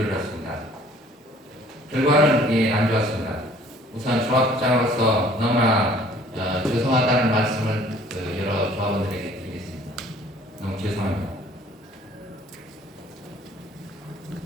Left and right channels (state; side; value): normal; both; correlation 0.55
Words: 결과는 안 좋았습니다. 우선 조합장으로서 너무나 죄송하다는 말씀을 여러 조합원들에게 드리겠습니다. 너무 죄송합니다.